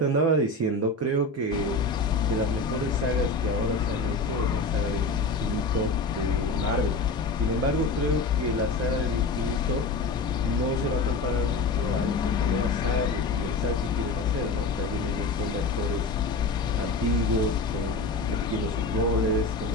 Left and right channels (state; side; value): quieter; right; 3.4 dB